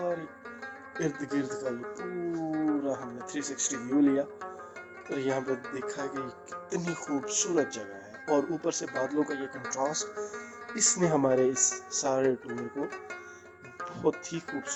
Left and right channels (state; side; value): identical; both; correlation 1.00